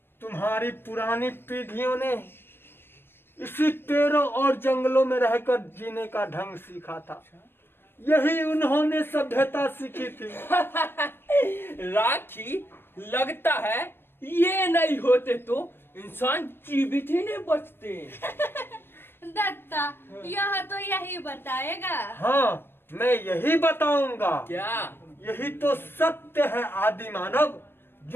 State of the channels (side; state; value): right; late; 0.11 ms